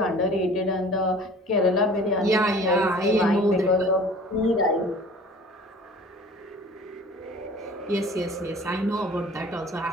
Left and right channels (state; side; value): normal; both; correlation 0.46